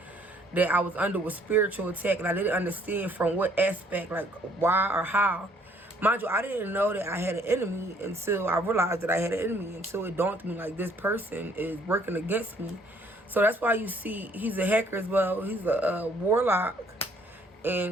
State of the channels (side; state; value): both; normal; correlation 0.62